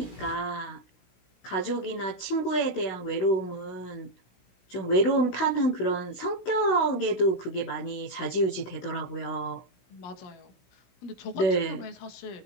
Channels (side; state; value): right; late; 16 ms